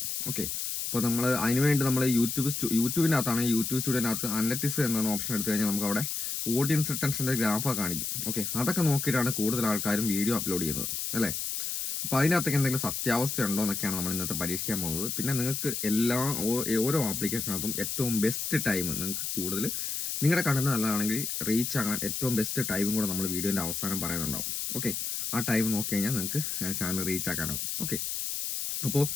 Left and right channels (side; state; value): left; noise; hiss, 3 dB below the sound